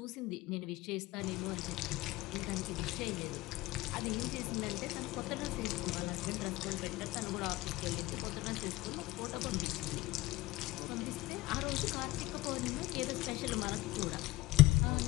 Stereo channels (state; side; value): quieter; right; 18.9 dB